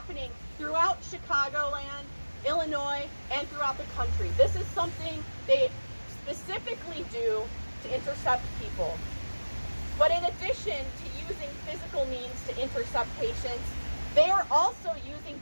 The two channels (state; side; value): inverted; both; correlation -1.00